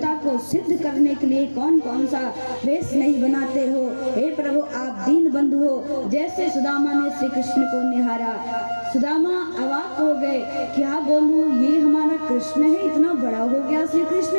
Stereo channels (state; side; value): inverted; both; correlation -1.00